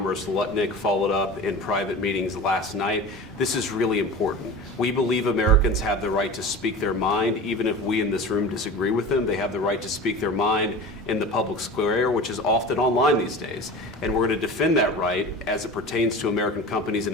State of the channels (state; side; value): normal; both; correlation 0.34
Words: Lutnick followed up in private meetings last night. This is really important. We believe Americans have the right to speak their mind, even if we in this room disagree with them. They have the right to speak their mind in the public square, which is often online these days. And we're going to defend that right as it pertains to American companies and